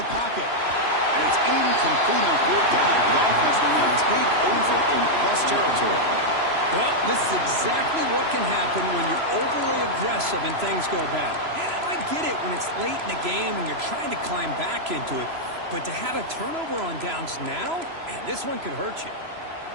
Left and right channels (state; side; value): late; left; 3.0 ms